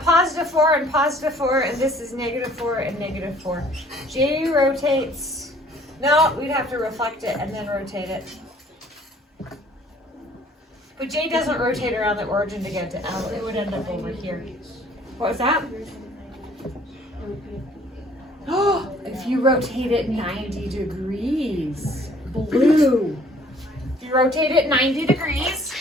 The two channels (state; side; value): normal; both; correlation 0.56